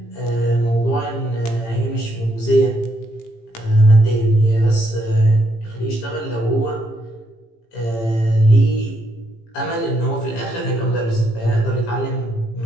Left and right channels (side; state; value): right; late; 18 ms